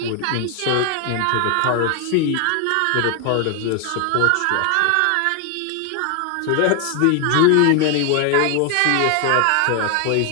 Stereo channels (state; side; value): different; both; correlation 0.00